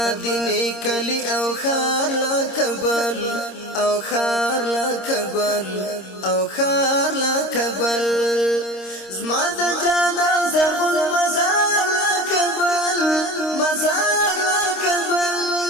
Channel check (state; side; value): late; right; 26 ms